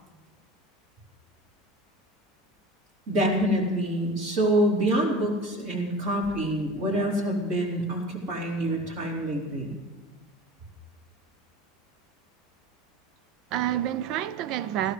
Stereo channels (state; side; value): normal; both; correlation 0.37